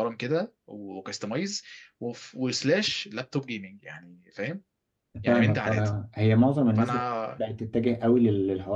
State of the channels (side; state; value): both; identical; correlation 1.00